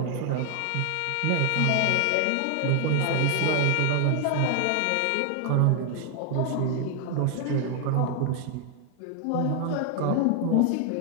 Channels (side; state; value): both; different; correlation 0.00